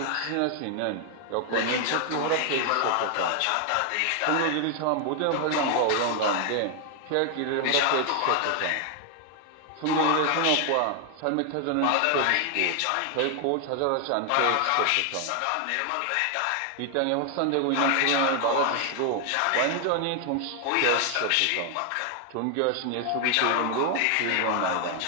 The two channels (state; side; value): different; both; correlation 0.00